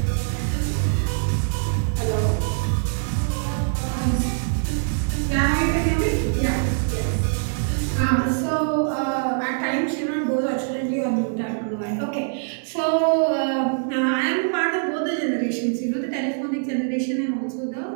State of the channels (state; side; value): silent; left; digital silence